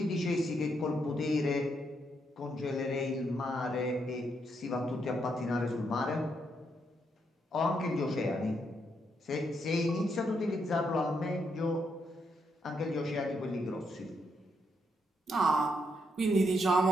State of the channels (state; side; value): normal; both; correlation 0.78